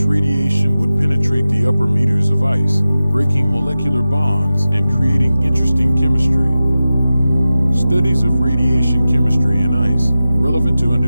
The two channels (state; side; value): inverted; both; correlation -0.94